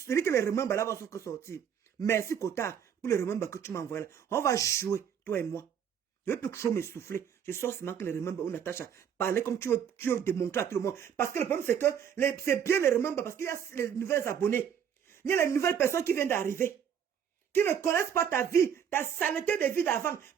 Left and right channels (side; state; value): left; quieter; 8.3 dB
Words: dit que les remembres là vont sortir. Merci Kota pour les remembres que tu m'envoies là. On va jouer, toi et moi. Je ne veux plus trop m'essouffler. Je sors seulement que les remember ou Natacha. Parler comme tu veux démontrer à tout le monde. Parce que le problème, c'est que c'est bien les remember parce qu'il y a les nouvelles abonnés. Il y a les nouvelles personnes qui viennent d'arriver. Qui ne connaissent pas ta vie, ta saleté de vie d'avant.